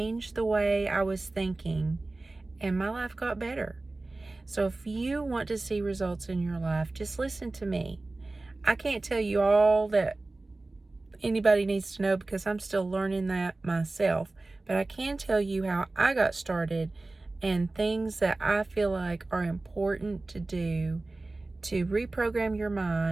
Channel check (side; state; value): left; quieter; 3.1 dB